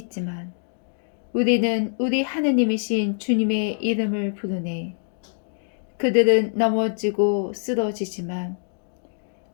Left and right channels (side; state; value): right; silent; digital silence